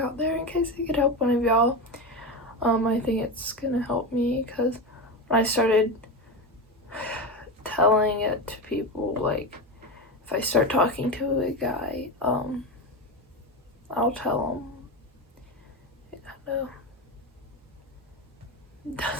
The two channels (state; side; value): normal; both; correlation 0.19